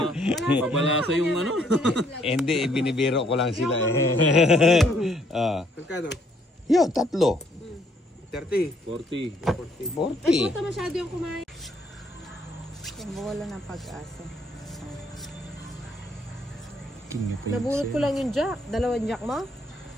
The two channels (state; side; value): normal; both; correlation 0.67